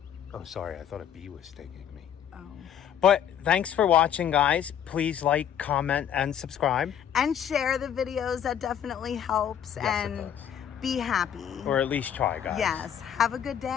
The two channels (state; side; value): quieter; right; 9.3 dB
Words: Oh, sorry, I thought a bee was stinging me. Oh. But thanks for watching, guys. Please like, comment, and subscribe. And share the videos. That definitely helps. Yes, and it does. be happy. Or at least try, guys. Yes. Have a good